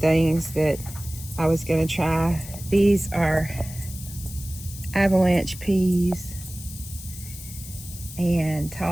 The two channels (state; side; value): noise; left; hiss, 14 dB below the sound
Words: that I was going to try. These are avalanche peas and